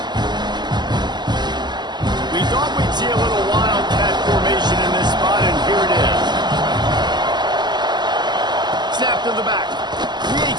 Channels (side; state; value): left; late; 0.21 ms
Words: We thought we'd see a little wildcat formation in this spot, and here it is. Snap to the back.